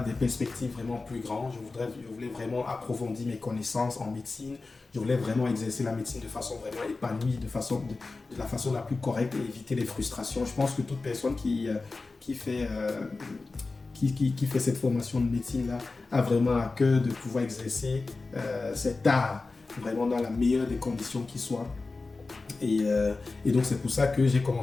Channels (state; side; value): quieter; right; 3.7 dB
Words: perspectives vraiment plus grandes. Je voulais vraiment approfondir mes connaissances en médecine. Je voulais vraiment exercer la médecine de façon vraiment épanouie, de la façon la plus correcte et éviter les frustrations. Je pense que toute personne qui fait cette formation de médecine-là a vraiment à cœur de pouvoir exercer cet art vraiment dans la meilleure des conditions qui soient. Et donc c'est pour ça que j'ai